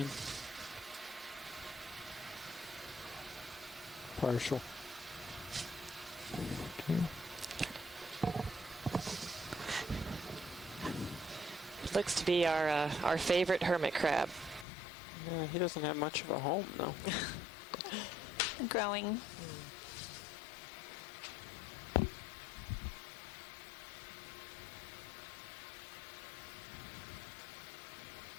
Partial. Okay. Looks to be our favorite hermit crab. Yeah, he doesn't have much of a home, though. Growing.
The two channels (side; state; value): right; drops out; at 14.7 s